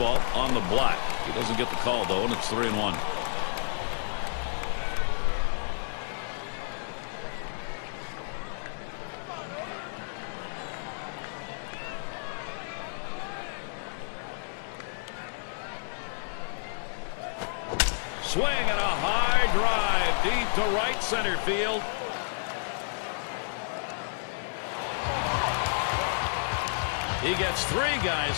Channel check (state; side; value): silent; right; digital silence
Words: on the black. He doesn't get the call, though, and it's 3-1. Swing and a high drive deep to right center field. He gets 3 guys